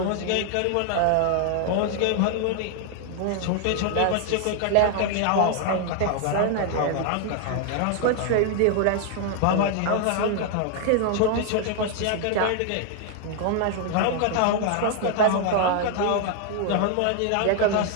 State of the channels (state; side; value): different; both; correlation 0.00